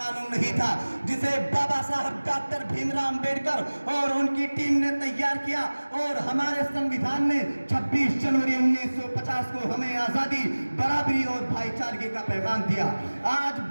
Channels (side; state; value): both; inverted; correlation -1.00